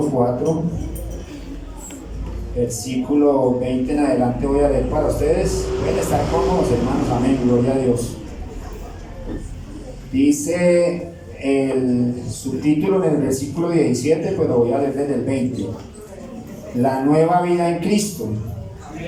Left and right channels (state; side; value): identical; both; correlation 1.00